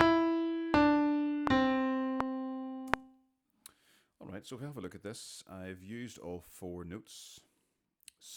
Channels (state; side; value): identical; both; correlation 1.00